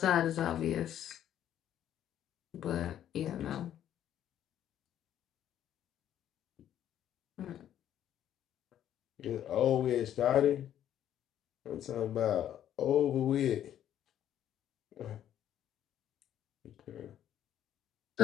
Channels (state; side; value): quieter; right; 10.9 dB